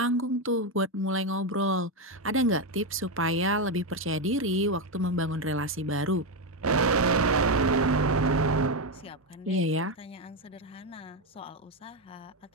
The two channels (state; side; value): normal; both; correlation 0.08